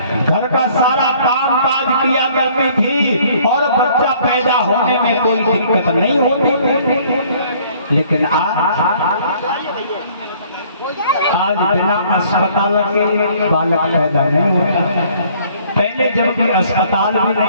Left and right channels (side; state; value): both; inverted; correlation -0.58